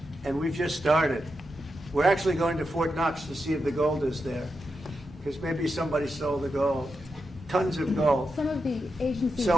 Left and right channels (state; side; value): normal; both; correlation 0.87